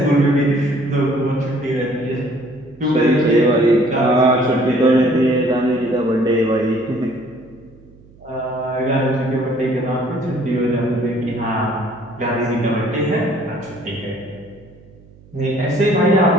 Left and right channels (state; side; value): noise; right; hum, 25 dB below the sound